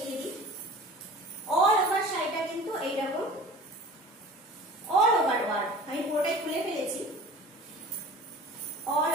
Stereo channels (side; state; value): both; normal; correlation 0.41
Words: দিই। অল ওভার শাড়িটা কিন্তু এইরকম অল ওভার ওয়ার্ক, আমি পুরোটাই খুলে ফেলেছি, অল